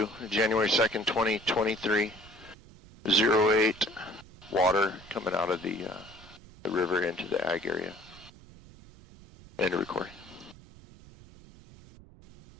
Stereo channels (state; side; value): noise; right; rumble, 21 dB below the sound